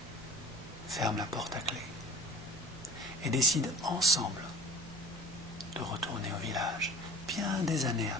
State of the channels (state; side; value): normal; both; correlation 0.43